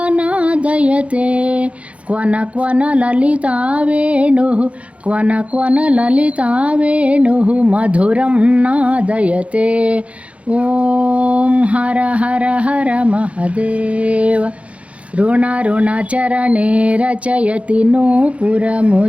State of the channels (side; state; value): left; late; 0.063 ms